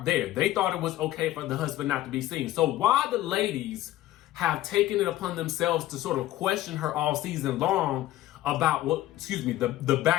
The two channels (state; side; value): quieter; right; 14.6 dB